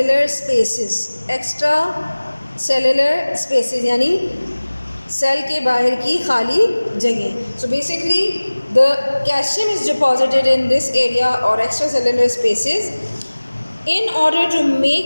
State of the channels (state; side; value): inverted; both; correlation -1.00